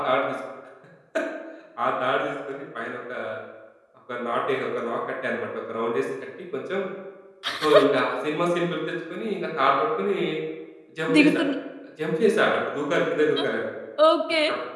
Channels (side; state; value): both; identical; correlation 1.00